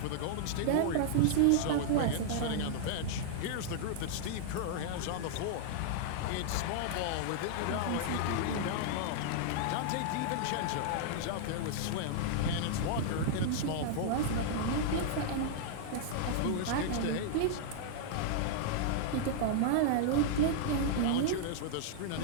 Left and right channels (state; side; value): different; both; correlation -0.01